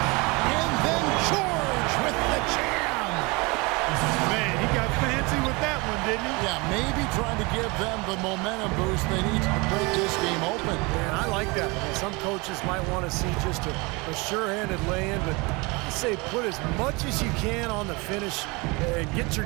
then George with the jam. Man, he got fancy with that one, didn't he? Yeah, maybe trying to give them the momentum boost they need to break this game open. Man, I like that. I mean, some coaches might want to see just a sure-handed lay-in, but I say put as much as you can on the finish and get your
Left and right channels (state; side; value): quieter; left; 26.5 dB